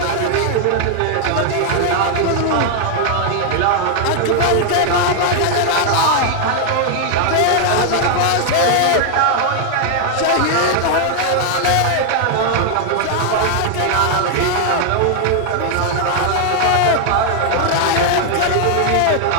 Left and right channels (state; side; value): different; both; correlation 0.00